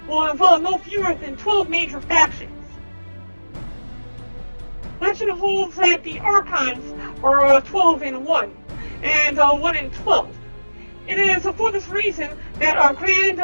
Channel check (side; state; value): both; inverted; correlation -1.00